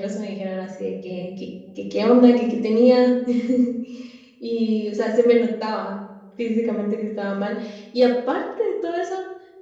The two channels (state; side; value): identical; both; correlation 1.00